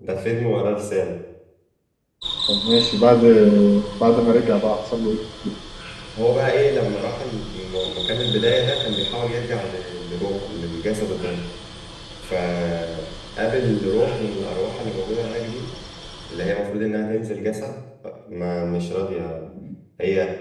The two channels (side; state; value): both; identical; correlation 1.00